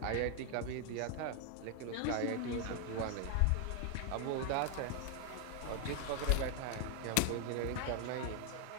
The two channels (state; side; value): different; both; correlation 0.00